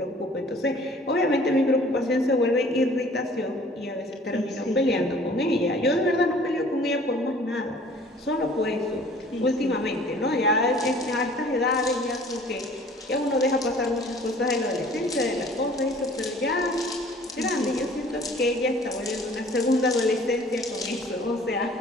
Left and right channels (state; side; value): normal; both; correlation 0.51